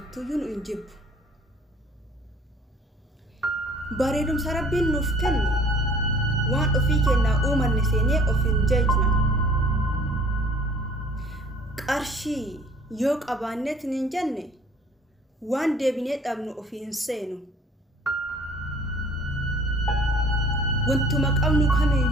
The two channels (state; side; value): normal; both; correlation 0.53